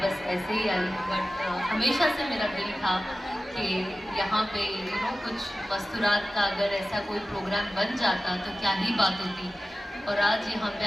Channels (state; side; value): normal; both; correlation 0.95